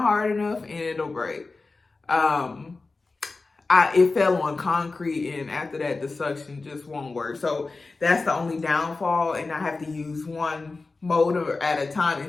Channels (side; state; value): right; quieter; 3.7 dB